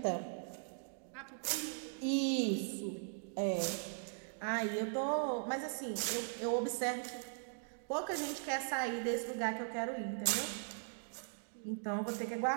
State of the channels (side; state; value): left; silent; digital silence